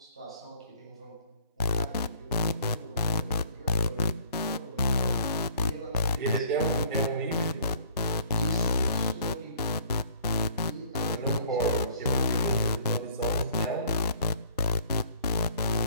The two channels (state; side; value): inverted; both; correlation -0.57